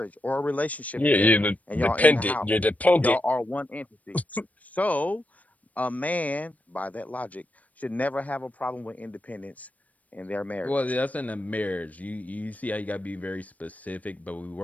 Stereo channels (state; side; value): late; right; 0.072 ms